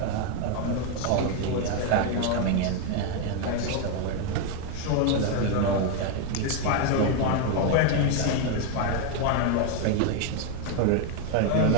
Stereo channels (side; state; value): both; different; correlation 0.01